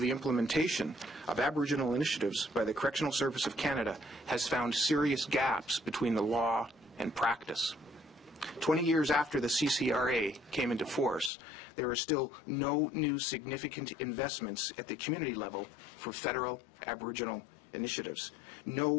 implementation of Aboriginal initiatives by the Correctional Service of Canada has found serious gaps between the law and practice. 20 years after the CCRA came into force, there are still no new significant investments at the community level for federal Aboriginal initiatives.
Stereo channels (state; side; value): drops out; right; at 11.3 s